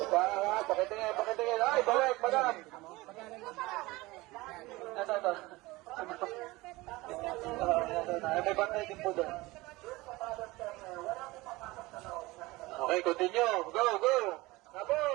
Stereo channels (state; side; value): quieter; left; 21.0 dB